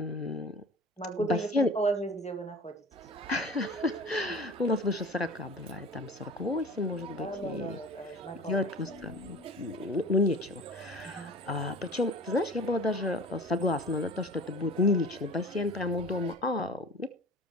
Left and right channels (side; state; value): both; normal; correlation 0.40